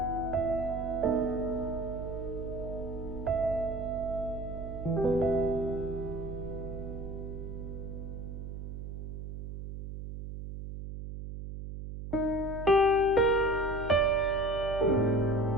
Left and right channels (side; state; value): right; noise; hum, 8 dB below the sound